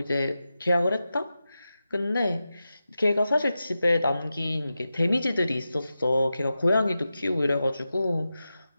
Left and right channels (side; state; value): both; inverted; correlation -0.92